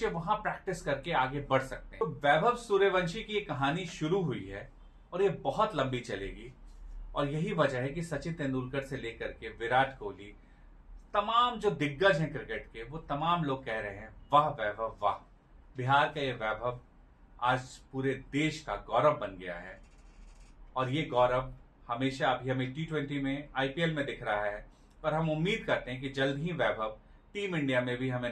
वहां प्रैक्टिस करके आगे बढ़ सकते हैं। तो वैभव सूर्यवंशी की ये कहानी शुरू हुई है और ये बहुत लंबी चलेगी और यही वजह है कि सचिन तेंदुलकर से लेकर के विराट कोहली, तमाम जो दिग्गज हैं क्रिकेट के, वो तमाम लोग कह रहे हैं वाह वैभव वाह। बिहार का ये वैभव आज पूरे देश का गौरव बन गया है और ये गौरव हमेशा अभी हमें T20 में, आईपीएल में दिख रहा है और हम उम्मीद करते हैं कि जल्द ही वैभव टीम इंडिया में भी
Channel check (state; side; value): identical; both; correlation 1.00